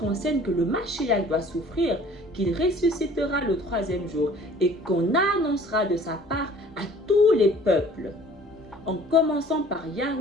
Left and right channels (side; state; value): both; normal; correlation 0.51